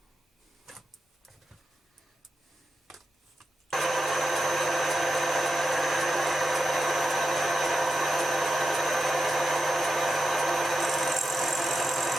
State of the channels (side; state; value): both; normal; correlation 0.89